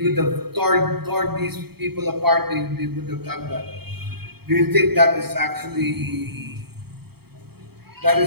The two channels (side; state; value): left; late; 0.96 ms